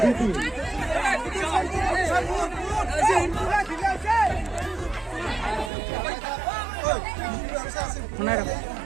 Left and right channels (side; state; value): left; drops out; at 5.7 s